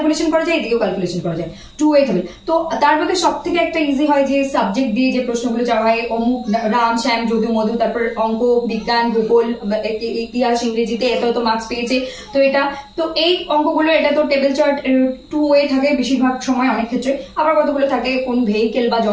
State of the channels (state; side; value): identical; both; correlation 1.00